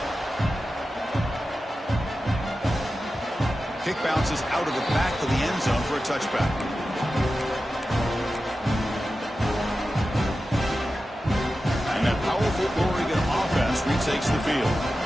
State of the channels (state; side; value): normal; both; correlation 0.93